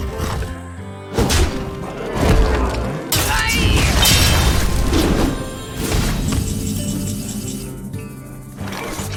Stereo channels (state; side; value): identical; both; correlation 1.00